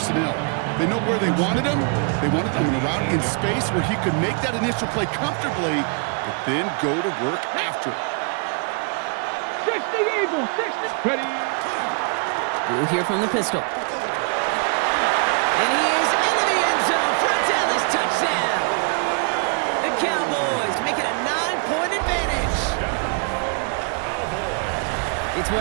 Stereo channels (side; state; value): left; quieter; 38.6 dB